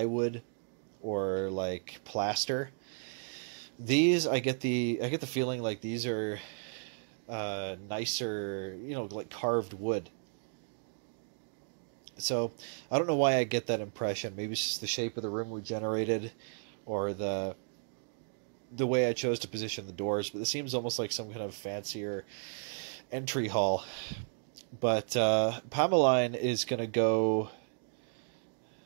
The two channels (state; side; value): silent; left; digital silence